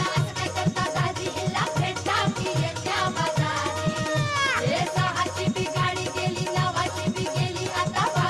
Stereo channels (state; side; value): identical; both; correlation 1.00